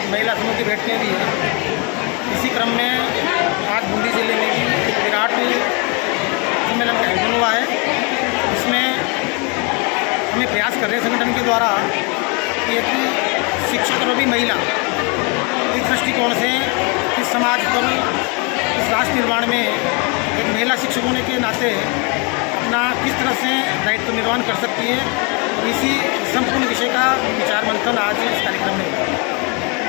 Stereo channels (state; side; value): quieter; right; 32.3 dB